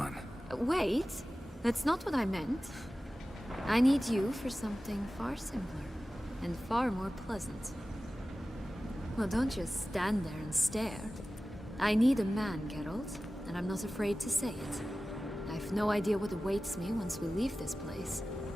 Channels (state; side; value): normal; both; correlation 0.96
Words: Wait, that's not what I meant. I need you for something far simpler and far more pleasant. Well, don't just stand there and stare. I need a man, Geralt, and I'm not afraid to say it. I've no idea what awaits me once we leave this place.